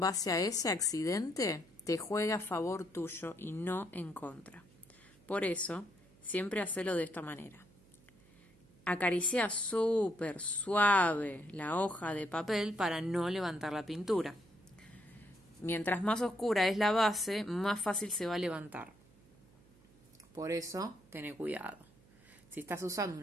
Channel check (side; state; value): right; noise; hum, 28 dB below the sound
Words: a ese accidente te juega a favor tuyo y no en contra. Por eso, siempre hacelo de esta manera. Acaricia súper suave la hoja de papel para no levantar la pintura. Mientras más oscura es la base, más fácil se va a levantar. Por eso, ten cuidado. Si estás usando